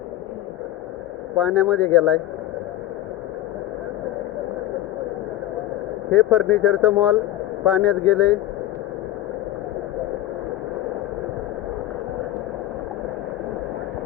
पाण्यामध्ये गेलाय. हे फर्निचरचं मॉल पाण्यात गेले.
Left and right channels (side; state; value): right; quieter; 13.8 dB